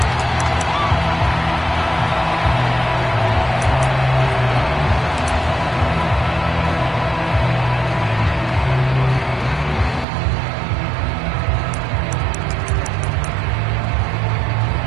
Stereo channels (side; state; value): left; drops out; at 10.1 s